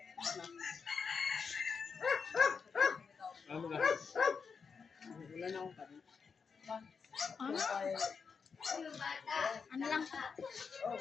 Ano ba? Wala na akong kanin. Ano? Ano lang?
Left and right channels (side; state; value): right; quieter; 5.6 dB